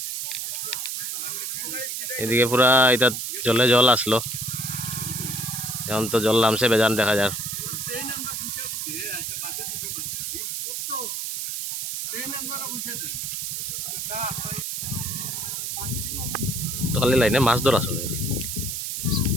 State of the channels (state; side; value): noise; right; hiss, 3 dB below the sound